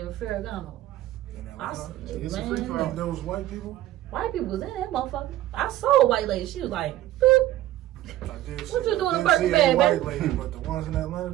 Ferragamo? It's a free for all. Those white people? White people was in that motherfucker. I saw a white lady. She was like, boop. What you doing in Birkin bag, white baby? lady, but the ones in Atlanta,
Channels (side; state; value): left; quieter; 14.6 dB